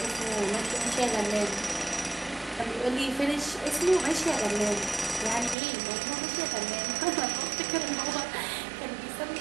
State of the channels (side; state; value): left; drops out; at 5.6 s